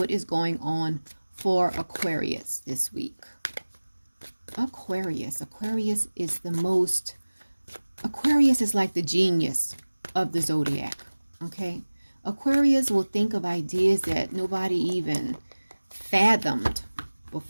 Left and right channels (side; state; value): both; inverted; correlation -1.00